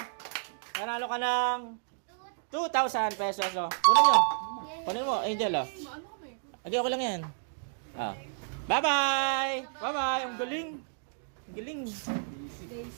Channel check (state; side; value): silent; left; digital silence